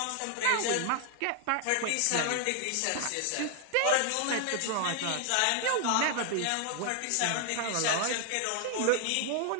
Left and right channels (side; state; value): both; different; correlation 0.00